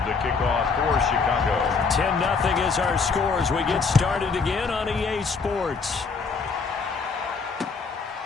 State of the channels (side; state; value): right; quieter; 4.9 dB